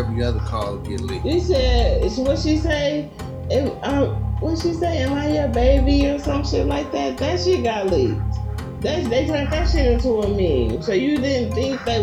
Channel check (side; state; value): both; identical; correlation 1.00